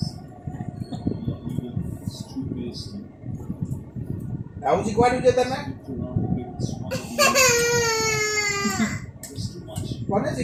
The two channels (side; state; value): both; identical; correlation 1.00